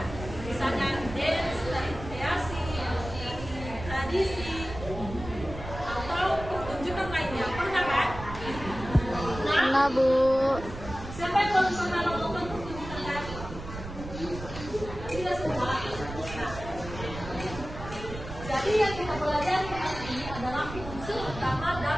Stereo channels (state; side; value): noise; right; rumble, 10 dB below the sound